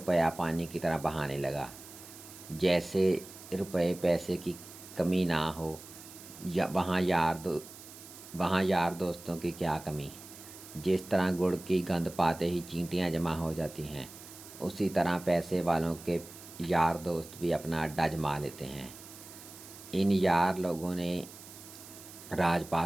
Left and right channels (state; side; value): noise; right; hiss, 17 dB below the sound